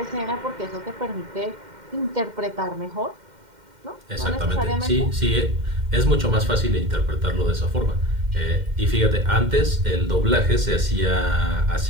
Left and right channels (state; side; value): late; left; 2.1 ms